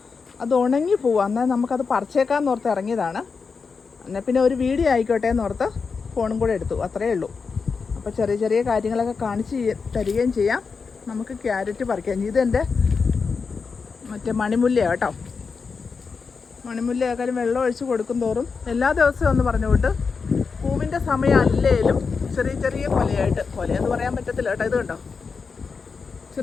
അത് ഉണങ്ങി പോവാം. എന്നാൽ നമുക്കത് പറിച്ചേക്കാമെന്ന് ഓർത്ത് ഇറങ്ങിയതാണ്. എന്നാൽ പിന്നെ ഒരു വീഡിയോ ആയിക്കോട്ടെ എന്നോർത്ത് ഫോണും കൂടെ എടുത്തു, അത്രയേ ഉള്ളൂ. അപ്പോൾ ചെറിയ കാര്യങ്ങളൊക്കെ കാണിച്ച് തരികയും ചെയ്യാം. നമുക്ക് ക്യാരറ്റ് പറിക്കാം. ഇതെൻ്റെ മറ്റേ മണിമുല്ലയാണ് കേട്ടോ. മണിമുല്ലയാക്കാലും വെള്ളം ഒഴിച്ച് കൊടുക്കും തോറും എല്ലാ ദിവസവും ഒന്ന് പറഞ്ഞുകൊണ്ട് പൂവിൻ്റെ സമയം അല്ലേലും ചെറിയ കൊലയെന്ന് പറയാൻ പറ്റത്തില്ല കേട്ടോ. ഇത് കണ്ടോ,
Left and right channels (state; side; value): quieter; right; 5.1 dB